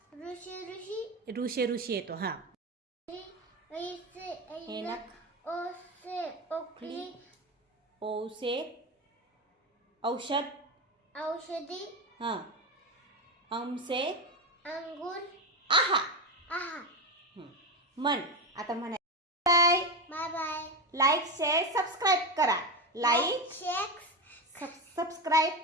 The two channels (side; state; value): both; normal; correlation 0.16